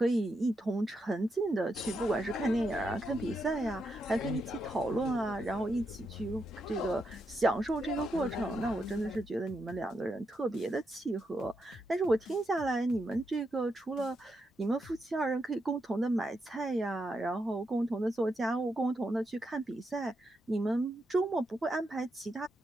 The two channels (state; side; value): normal; both; correlation 0.83